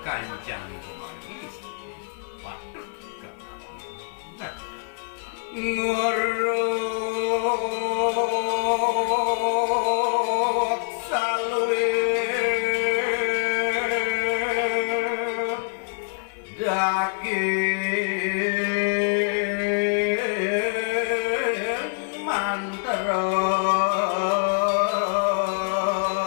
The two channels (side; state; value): right; silent; digital silence